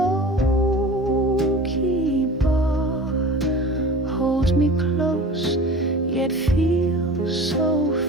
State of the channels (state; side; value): normal; both; correlation 0.38